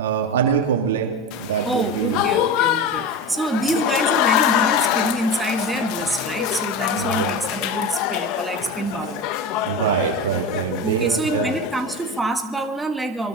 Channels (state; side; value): normal; both; correlation 0.24